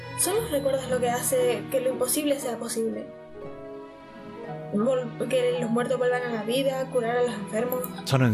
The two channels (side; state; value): both; identical; correlation 1.00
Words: Son los recuerdos lo que hace que lo imposible sea posible. Que los muertos vuelvan a la vida, curar a los enfermos.